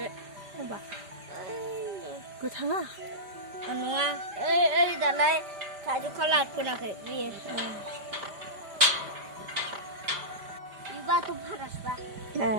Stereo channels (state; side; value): late; left; 5.0 ms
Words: माबा गोथाङा Nua. Dalai kaju kalah pun aku dia. Iba tu panas bah. ए